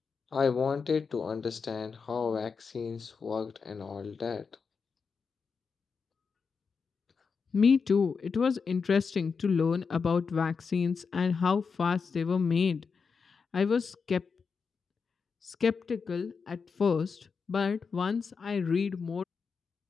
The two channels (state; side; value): quieter; right; 5.4 dB